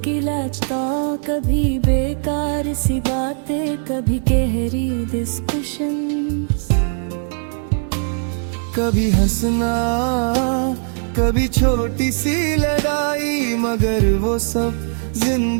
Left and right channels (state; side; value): silent; left; 57 dB below the other